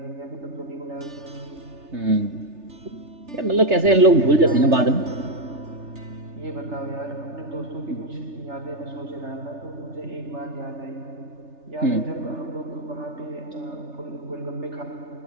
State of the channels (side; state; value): left; late; 3.3 ms